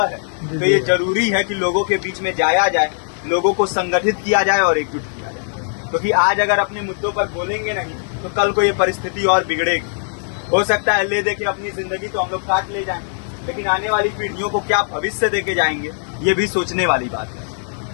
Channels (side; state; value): right; silent; 66 dB below the other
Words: है तो ये जरूरी है कि लोगों के बीच में जाया जाए, लोगों को संगठित किया जाए और एकजुट किया जाए। क्योंकि आज अगर अपने मुद्दों पर बोलेंगे नहीं तो कल को ये परिस्थिति और बिगड़ेगी। हो सकता है ले दे के अपनी जिंदगी तो हम लोग काट ले जाएं, लेकिन आने वाली पीढ़ियों को क्या भविष्य देके जाएंगे, ये भी सोचने वाली बात है।